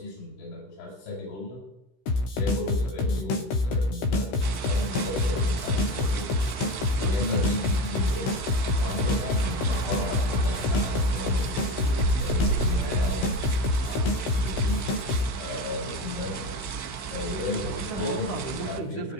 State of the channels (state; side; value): late; right; 16 ms